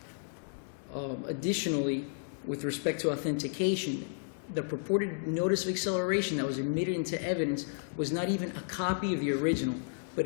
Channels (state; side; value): silent; right; digital silence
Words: Additionally, with respect to authentication, the purported notice of acceleration that was admitted into evidence was not even a copy of the original,